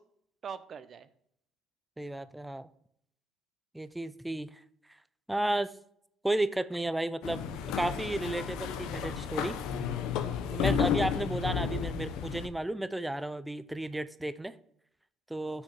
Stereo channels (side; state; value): both; normal; correlation 0.75